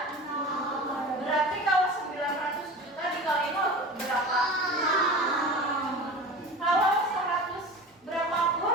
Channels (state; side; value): normal; both; correlation 0.34